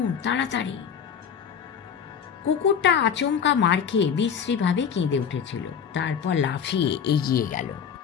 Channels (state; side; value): quieter; right; 7.5 dB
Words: তাড়াতাড়ি। কুকুরটা আচমকা মার খেয়ে বিশ্রীভাবে কেঁদে উঠেছিল, তারপর লাফিয়ে এগিয়ে গেল।